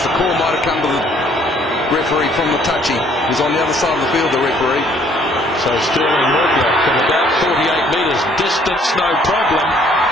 the call might have come to the referee from the touchy. He's on the other side of the field, the referee. So Sterling Mortlock from about 48 metres distance, no problem.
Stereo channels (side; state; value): both; normal; correlation 0.62